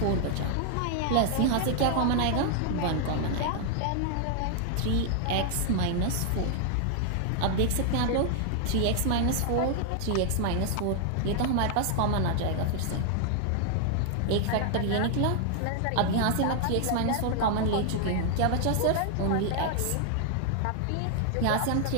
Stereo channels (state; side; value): different; both; correlation 0.00